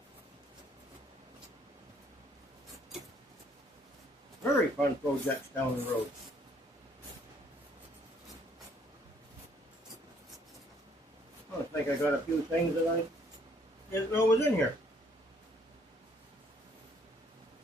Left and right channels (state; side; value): normal; both; correlation 0.63